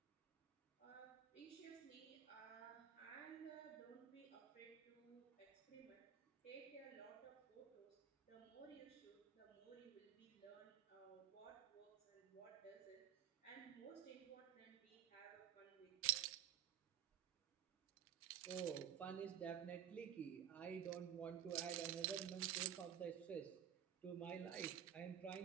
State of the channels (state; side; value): quieter; left; 10.0 dB